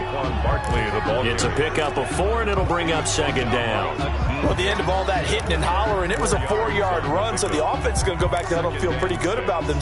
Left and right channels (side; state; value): both; identical; correlation 1.00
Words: Barkley, the ball. It's a pickup of 4, and it'll bring up 2nd down. Well, at the end of all that hitting and hollering, it was a 4-yard run, so the offense is going to go back to huddle, feel pretty good about